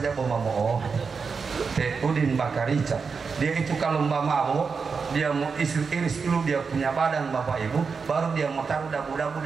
Bomamoo. Udin Bakarica. Dia itu kalau mabuk, dia mau iris dulu dia punya badan Bapak Ibu, baru dia mau taruh dabu-dabu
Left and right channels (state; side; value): quieter; left; 5.3 dB